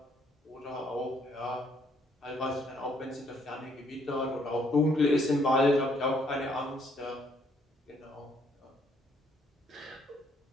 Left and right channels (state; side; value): normal; both; correlation 0.68